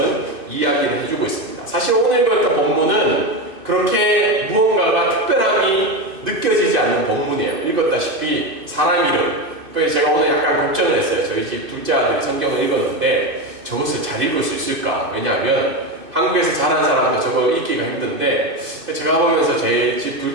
이야기를 해주고 있습니다. 사실 오늘 읽었던 본문은 그렇게 무언가가 특별함이 느껴지지 않는 본문이에요. 읽었다시피 사람 이름. 그래서 제가 오늘 약간 걱정을 했어요. 저희 집 둘째 아들이 성경을 읽었는데 저것을 잘 읽을 수 있을까? 왜냐하면 한국에서 자란 사람도 저걸 읽기가 힘든데 제가 보면서 제 집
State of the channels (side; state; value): left; late; 2.6 ms